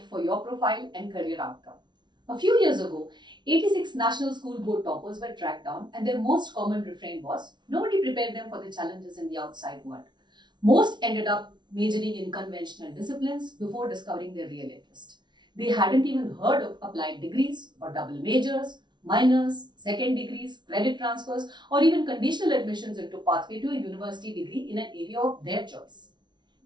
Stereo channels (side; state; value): left; late; 0.21 ms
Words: for your profile and career outcome? A few years ago, 86 national school board toppers were tracked down, and their most common refrain was nobody prepared them for the challenges in the outside world. Most ended up majoring in conventional disciplines before discovering their real interest. They hadn't even heard of applied degrees or double majors, minors, second degrees, credit transfers, or even conditional admissions into pathway to a university degree in an area of their choice.